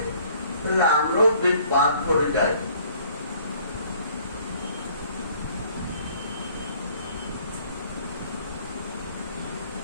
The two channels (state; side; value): inverted; both; correlation -0.58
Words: তাহলে আমরাও বাদ করে যাই।